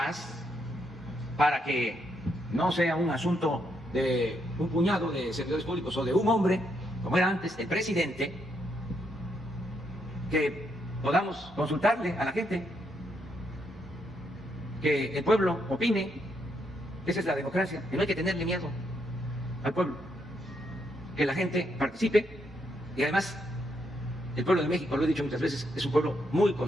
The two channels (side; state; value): both; normal; correlation 0.77